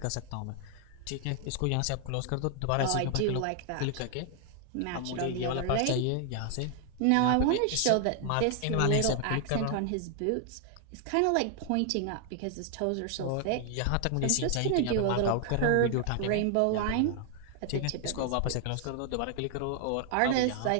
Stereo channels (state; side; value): different; both; correlation 0.00